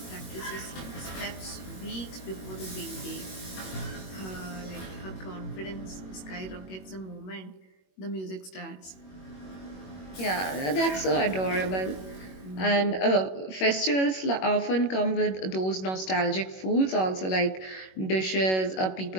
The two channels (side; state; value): right; late; 21 ms